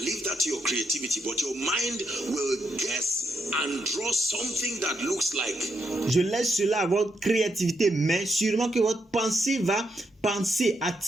leave that to your creativity, but your mind will guess and draw something that looks like. Je laisse cela à votre créativité, mais sûrement que votre pensée va penser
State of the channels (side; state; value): both; normal; correlation 0.79